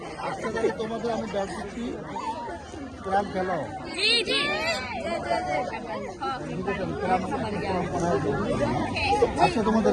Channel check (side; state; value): both; identical; correlation 1.00